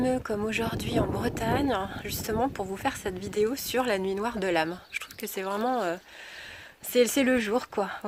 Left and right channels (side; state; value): both; identical; correlation 1.00